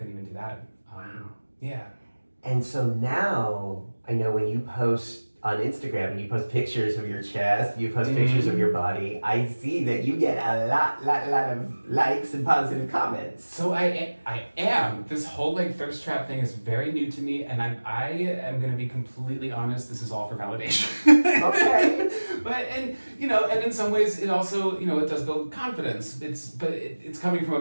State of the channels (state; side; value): inverted; both; correlation -1.00